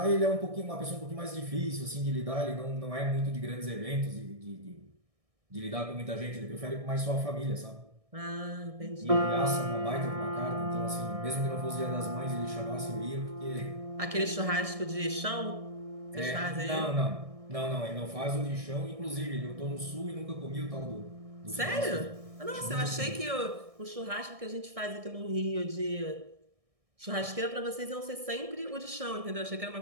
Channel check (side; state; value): left; late; 1.6 ms